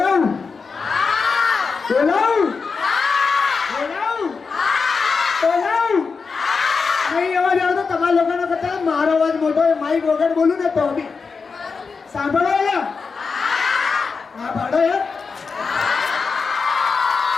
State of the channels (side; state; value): right; quieter; 5.0 dB